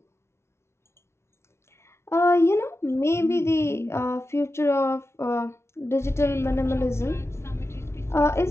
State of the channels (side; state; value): right; late; 0.13 ms